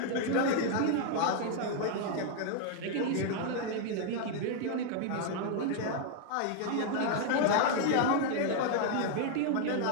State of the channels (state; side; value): different; both; correlation 0.00